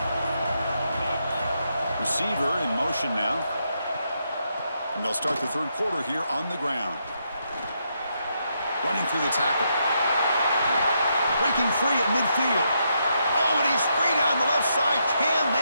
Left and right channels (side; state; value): both; inverted; correlation -0.79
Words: Receiver in motion now. And they'll start the third quarter here on the ground. Running through the tackle. Breaking free at midfield. Oh, and he's free down the left side. Can